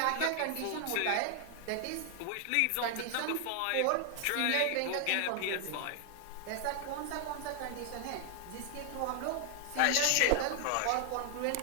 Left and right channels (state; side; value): different; both; correlation 0.00